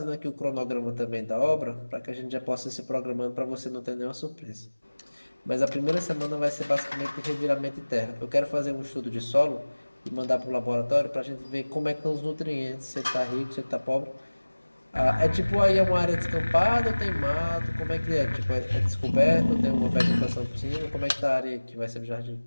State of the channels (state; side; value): inverted; both; correlation -1.00